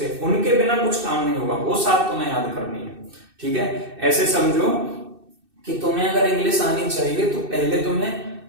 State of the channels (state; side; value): late; left; 2.6 ms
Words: पे, उनके बिना कुछ काम नहीं होगा, वो सात तुम्हें याद करनी है। ठीक है, ऐसे समझो कि तुम्हें अगर इंग्लिश आनी चाहिए तो पहले तुम्हें